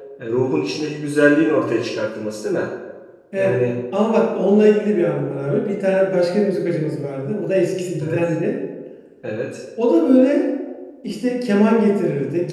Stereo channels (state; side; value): identical; both; correlation 1.00